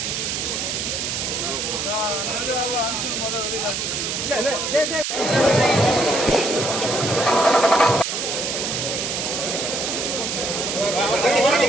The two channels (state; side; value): noise; right; hiss, 2 dB below the sound